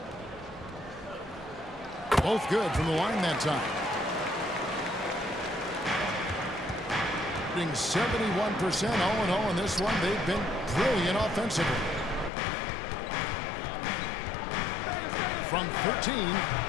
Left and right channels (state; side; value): drops out; right; at 12.3 s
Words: Both good from the line that time. Shooting 71%, 0-0 in this one. They've been brilliant offensively. From 13,